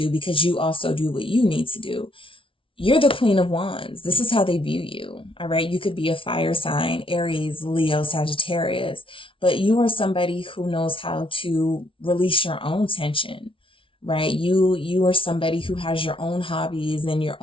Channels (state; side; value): late; right; 0.25 ms